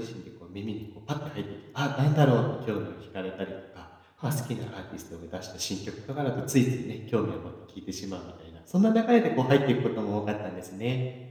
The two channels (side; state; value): both; identical; correlation 1.00